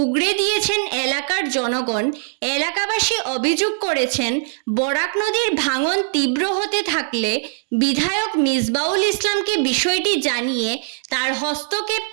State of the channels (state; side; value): silent; left; digital silence